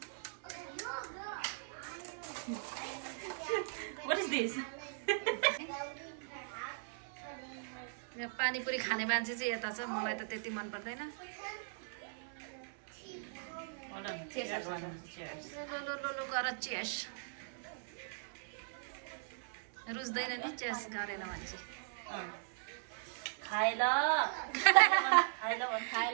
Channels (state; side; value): silent; left; 52 dB below the other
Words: What is this? यहाँ पानीपुरी खाने मान्छे चाहिँ यता छ, मलाई त त्यति मन पर्दैन। लो गर चेस। रुच्दैन नि चेस गरेन मान्छे। खाइ ल खाइ